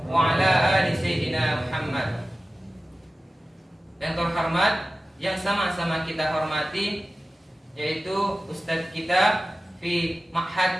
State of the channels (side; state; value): both; normal; correlation 0.95